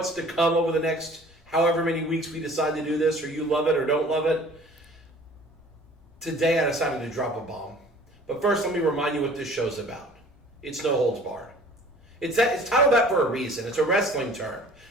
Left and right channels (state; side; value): normal; both; correlation 0.49